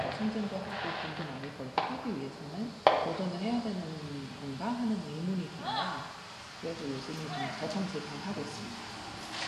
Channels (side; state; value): both; identical; correlation 1.00